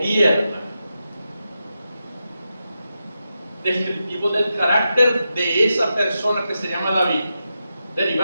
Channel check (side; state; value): both; inverted; correlation -0.89